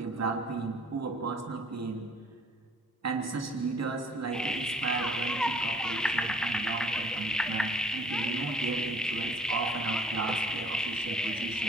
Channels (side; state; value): both; normal; correlation 0.56